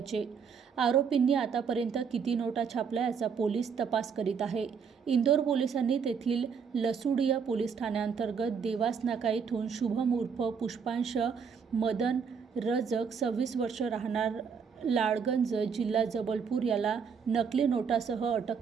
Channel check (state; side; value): quieter; left; 6.3 dB